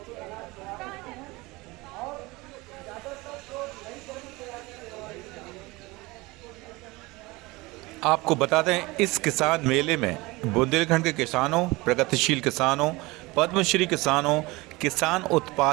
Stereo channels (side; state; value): left; quieter; 22.5 dB